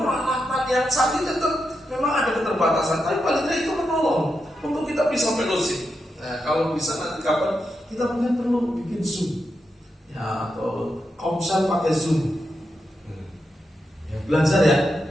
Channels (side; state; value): both; normal; correlation 0.86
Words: yang canggih, tetap memang ada keterbatasan. Tapi paling tidak itu menolong untuk kita bisa fellowship. Nah, kalau bisa nanti kapan kita mungkin perlu bikin Zoom ya, atau komsel pakai Zoom. Ya, belajar ya.